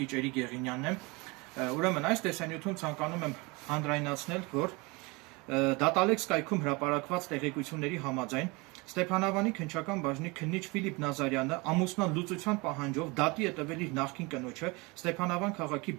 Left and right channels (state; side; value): quieter; left; 26.2 dB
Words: Էրիկ Եղինյանն եմ։ Ուրեմն այս տեսանյութում ցանկանում եմ հանրայնացնել, որ Դատալեքս կայքում հրապարակված տեղեկությունների համաձայն Ստեփանավանի քննչական բաժնի քննիչ Ֆիլիպ Նազարյանը ամուսնան լուծության պահանջով դատի է տվել իր նախկին կնոջը Ստեփանավան քաղաքի